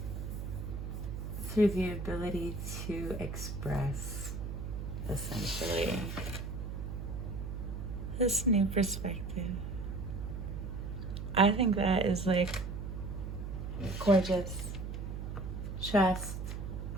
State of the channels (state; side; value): noise; right; hum, 5 dB below the sound